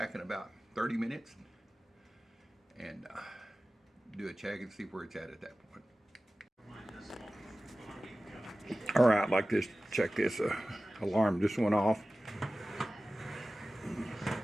in about 30 minutes and do a check and see where it's at that point. All right, like this, check this alarm just went off.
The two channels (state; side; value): normal; both; correlation 0.96